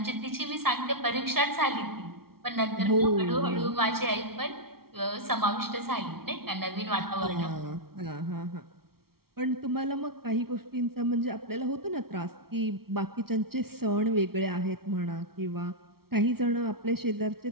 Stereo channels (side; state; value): left; late; 0.94 ms